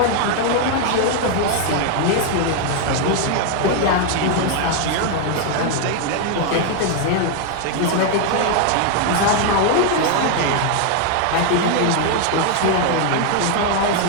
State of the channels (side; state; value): both; different; correlation 0.00